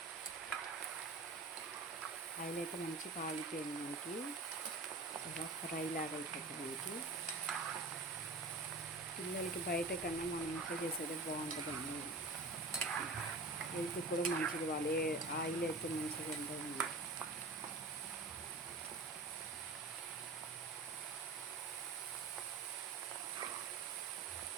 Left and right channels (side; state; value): left; quieter; 3.2 dB